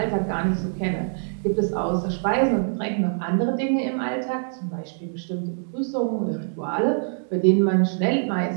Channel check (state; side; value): silent; left; digital silence